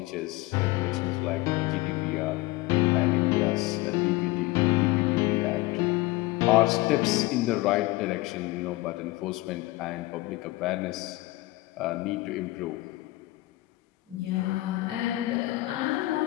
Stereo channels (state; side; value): quieter; right; 19.8 dB